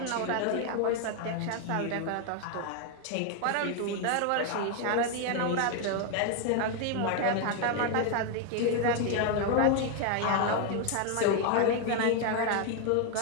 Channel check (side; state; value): both; different; correlation 0.01